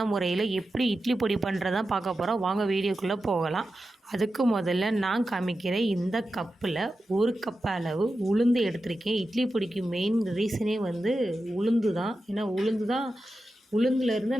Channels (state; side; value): normal; both; correlation 0.91